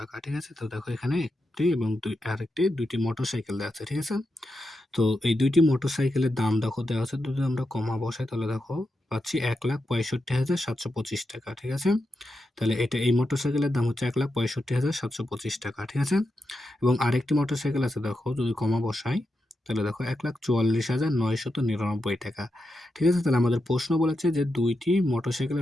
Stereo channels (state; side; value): normal; both; correlation 0.87